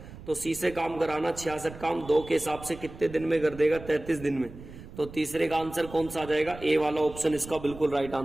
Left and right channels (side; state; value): right; noise; rumble, 15 dB below the sound